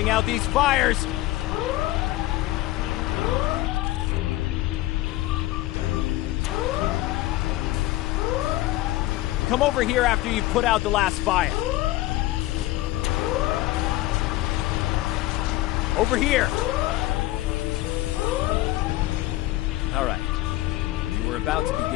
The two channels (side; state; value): right; quieter; 16.9 dB